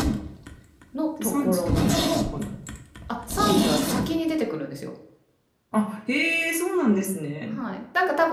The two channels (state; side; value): identical; both; correlation 1.00